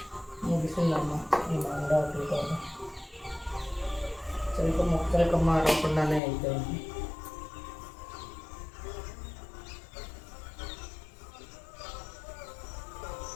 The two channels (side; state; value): right; drops out; at 6.2 s